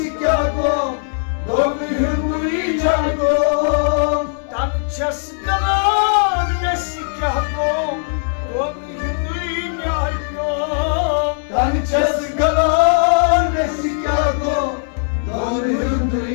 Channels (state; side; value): silent; right; digital silence